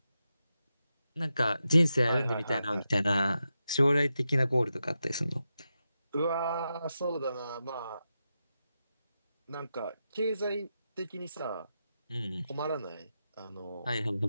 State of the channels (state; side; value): inverted; both; correlation -0.89